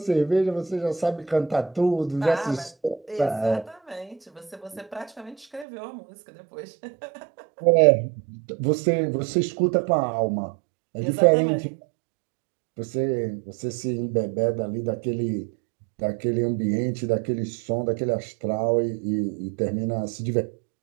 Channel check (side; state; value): left; drops out; at 5.7 s